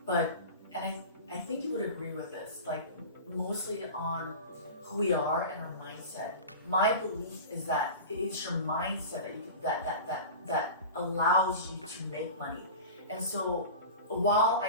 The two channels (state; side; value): inverted; both; correlation -0.32